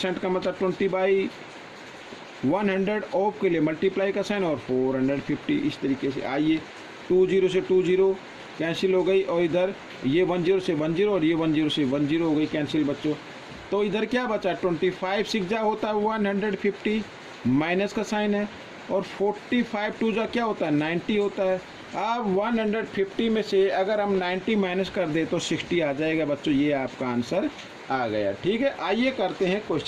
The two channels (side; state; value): both; identical; correlation 1.00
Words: का मतलब 20/100, ऑफ के लिए मल्टीप्लाई का साइन और 450, इस तरीके से। आइए 20 से 20 कैंसिल हो गई, और इधर ये 10 से 10 और ये 10 से 10 हो गई कैंसिल बच्चों। तो इधर क्या बचा, 25 6 जा होता है 150, माइनस का साइन है, और 45 2 जा क्या होता है 90 होता है। अब 150 में से अगर हम 90 माइनस कर दे तो 60 आ जाएगा बच्चों। ये आपका आंसर आ गया, ठीक है। आइए करते हैं